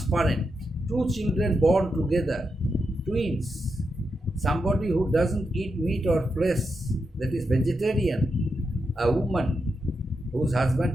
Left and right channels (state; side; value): normal; both; correlation 0.86